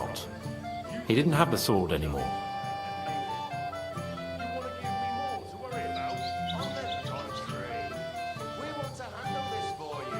He didn't have the sword anymore.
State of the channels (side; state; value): both; identical; correlation 1.00